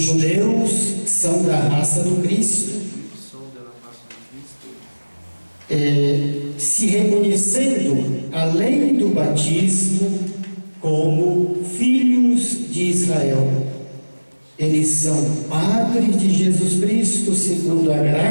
judeus são da raça do Cristo, se reconhecendo, além do batismo, como filhos de Israel. Eles são padres de Jesus Cristo segundo a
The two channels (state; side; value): inverted; both; correlation -1.00